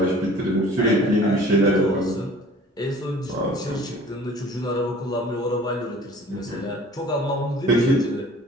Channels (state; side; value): normal; both; correlation 0.47